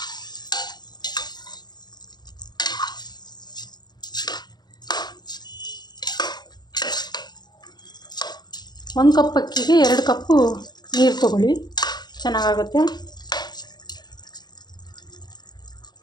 ಒಂದು ಕಪ್ ಅಕ್ಕಿಗೆ 2 ಕಪ್ಪು ನೀರು ತೊಗೊಳ್ಳಿ, ಚೆನ್ನಾಗಾಗುತ್ತೆ.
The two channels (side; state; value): right; late; 0.20 ms